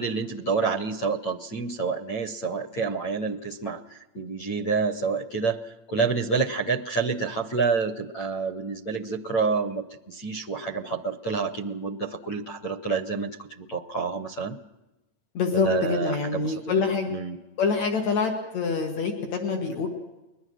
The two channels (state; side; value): late; right; 8.9 ms